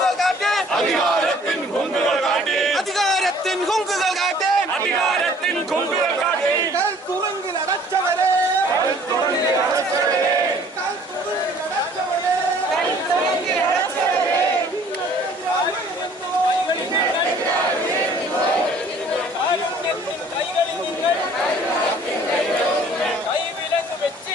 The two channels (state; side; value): normal; both; correlation 0.55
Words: കാട്ടേ, അധികാരത്തിൻ ഹുങ്കുകൾ കാട്ടേ, അധികാരത്തിൻ ഹുങ്കുകൾ കാട്ടേ, അധികാരത്തിൻ ഹുങ്കുകൾ കാട്ടേ. തുറങ്കിൽ അടച്ചവരെ, തുറങ്കിൽ അടച്ചവരെ, തുറങ്കിൽ അടച്ചവരെ, തുറങ്കിൽ അടച്ചവരെ, കൈകളിൽ നിങ്ങൾ കൈവിലങ്ങ്